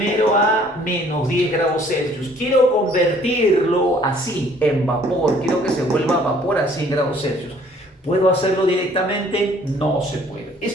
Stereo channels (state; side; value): normal; both; correlation 0.58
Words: a menos 10 grados Celsius. Quiero convertirlo así, en vapor. Quiero que se vuelva vapor a 100 grados Celsius. ¿Puedo hacerlo directamente? No se puede.